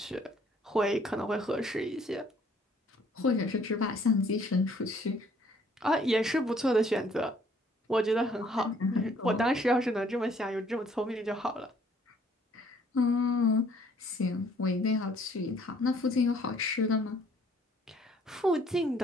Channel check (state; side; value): normal; both; correlation 0.61